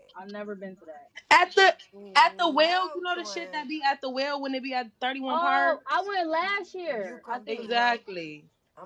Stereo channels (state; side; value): identical; both; correlation 1.00